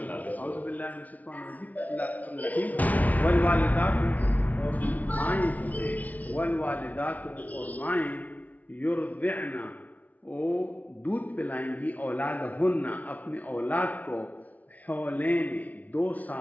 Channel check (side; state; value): right; late; 0.073 ms